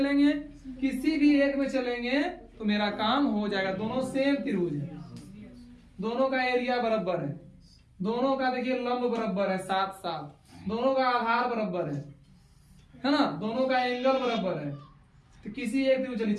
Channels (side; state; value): both; identical; correlation 1.00